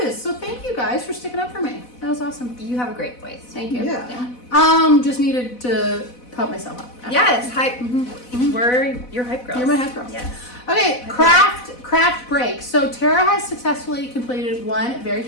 So thank you guys for sticking up for me. That was awesome. You have a great voice. Thank you. Yeah. Just needed to pump myself up. Yes, hype. We're your hype girls. You're my hype girls. Yes. Okay, craft break. So Tara has successfully completed 1 very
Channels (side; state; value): right; late; 4.0 ms